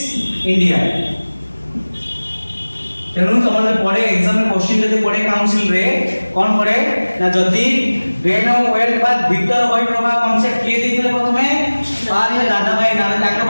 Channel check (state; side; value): inverted; both; correlation -1.00